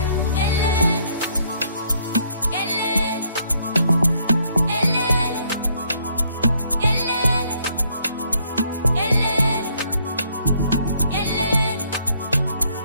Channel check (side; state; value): both; inverted; correlation -0.68